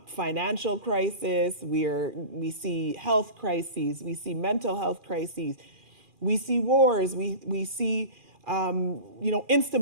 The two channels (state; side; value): late; left; 2.4 ms